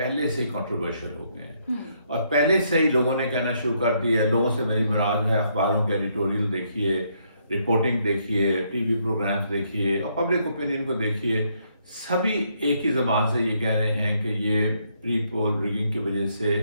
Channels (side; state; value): both; inverted; correlation -0.73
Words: سے ہی کنٹروورشل ہو گئے ہیں. اور پہلے سے ہی لوگوں نے کہنا شروع کر دیا ہے. لوگوں سے میری مراد ہے اخباروں کے ایڈیٹوریل دیکھیے، رپورٹنگ دیکھیے، ٹی وی پروگرامز دیکھیے اور پبلک اوپینین کو دیکھیے، سبھی ایک ہی زبان سے یہ کہہ رہے ہیں کہ یہ پری پول ریگنگ کی وجہ سے